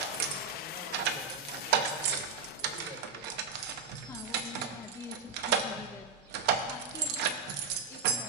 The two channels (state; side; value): quieter; left; 5.1 dB